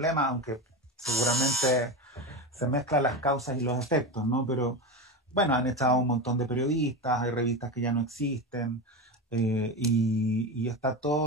aunque seguramente se mezclan las causas y los efectos, ¿no? Pero bueno, han echado un montón de periodistas, hay revistas que ya no existen, y está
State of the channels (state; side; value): normal; both; correlation 0.21